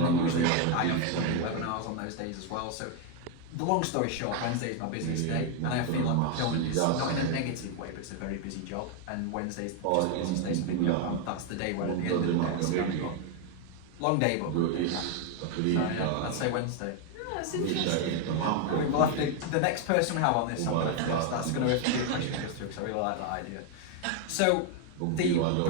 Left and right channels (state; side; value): different; both; correlation 0.01